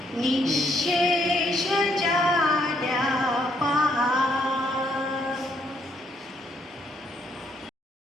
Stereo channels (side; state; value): both; normal; correlation 0.71